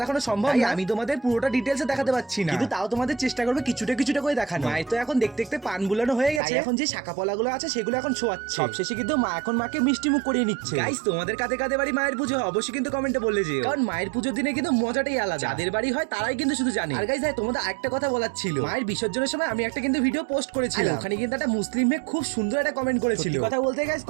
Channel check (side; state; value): left; drops out; at 6.4 s